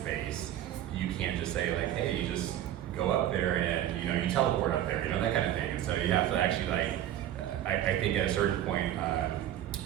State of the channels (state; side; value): quieter; left; 12.0 dB